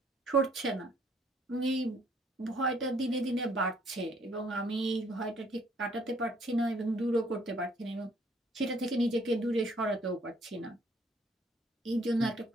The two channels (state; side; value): normal; both; correlation 0.63